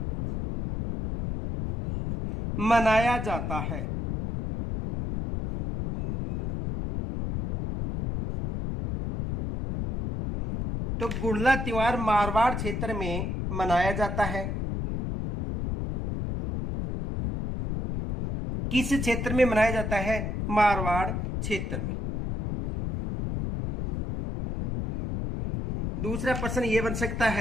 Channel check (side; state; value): left; noise; rumble, 3 dB below the sound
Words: मनाया जाता है? तो गुड़ला त्योहार मारवाड़ क्षेत्र में मनाया जाता है। किस क्षेत्र में मनाया जाता है? मारवाड़ क्षेत्र में। दूसरा प्रश्न यह बन सकता